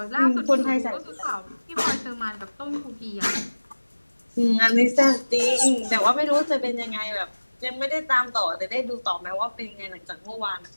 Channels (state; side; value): inverted; both; correlation -1.00